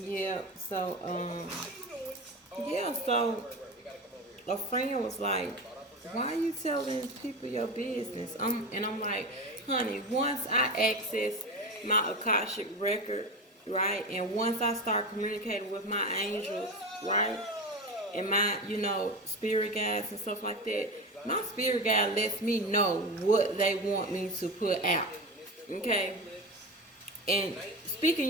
so yeah, so a friend was like, "Why are you telling people your business?" I'm like, "Honey, once I access my Akashic record, right, and once I start communicating with my angels, right, and my spirit guides and stuff like that, my spirit guide lets me know what they want me to put out. Okay, and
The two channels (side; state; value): both; normal; correlation 0.24